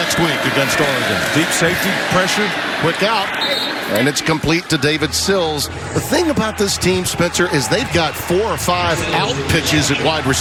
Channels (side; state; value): both; identical; correlation 1.00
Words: week against Oregon. Deep safety, pressure, quick out, and it's complete to David Sills. The thing about this team, Spencer, is they've got 4 or 5 out pitches at wide